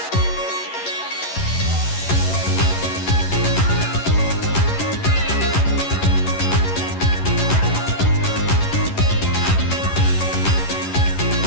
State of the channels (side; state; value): right; late; 11 ms